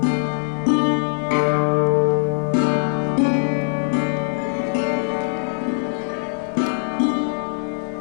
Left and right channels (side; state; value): right; silent; digital silence